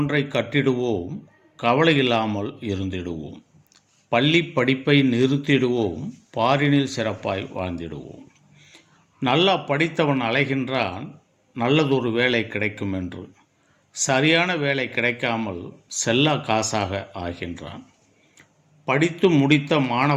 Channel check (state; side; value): identical; both; correlation 1.00